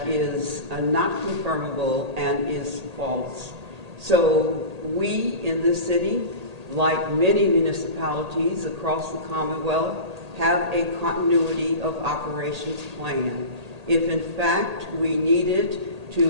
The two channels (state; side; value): late; left; 1.8 ms